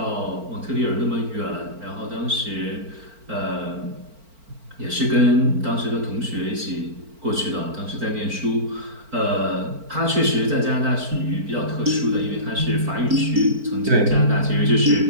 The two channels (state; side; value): late; left; 4.4 ms